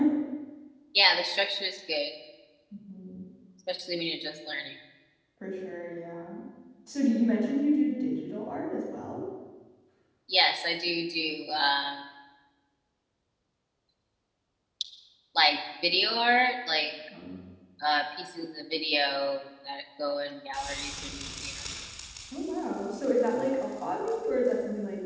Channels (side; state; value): both; identical; correlation 1.00